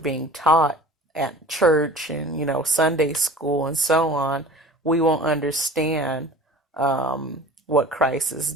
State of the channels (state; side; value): normal; both; correlation 0.42